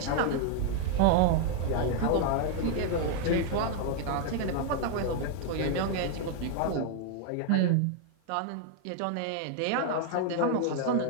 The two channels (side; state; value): both; different; correlation 0.00